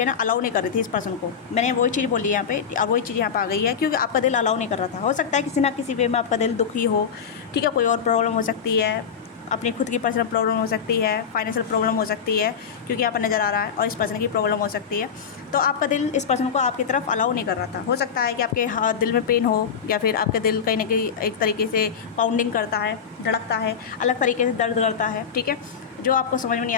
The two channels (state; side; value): quieter; right; 6.9 dB